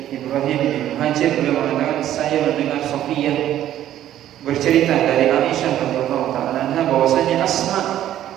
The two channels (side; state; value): left; quieter; 12.1 dB